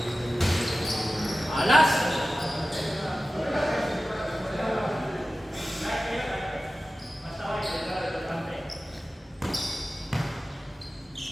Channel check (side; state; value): both; normal; correlation 0.95